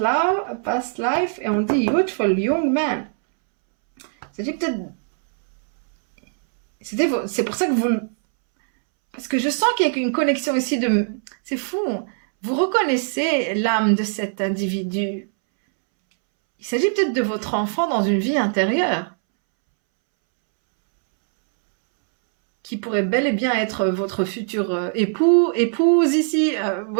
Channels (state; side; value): silent; left; 65 dB below the other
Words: et on dit youthful young man. C'est peut-être c'est pour ça que parce que je sens qu'il y a une connexion ici c'est fou. Vous reconnaissez l'âme de cet individu. Il s'agit peut-être de votre enfant dans une vie intérieure, qui pourrait bel et bien être votre futur épouse ici. Vous